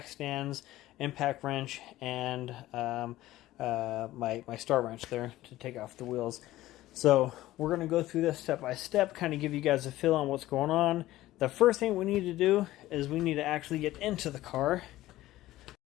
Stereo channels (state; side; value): quieter; right; 15.9 dB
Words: stands, impact wrench, and my star wrench there to take off the wheels. So we're going to go through this step by step, kind of give you guys a feel on what's going on. The first thing we need to do is we need to actually get into the car.